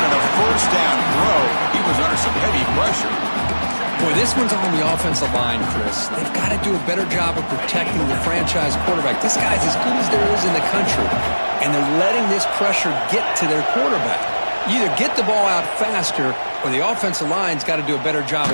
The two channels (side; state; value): both; inverted; correlation -1.00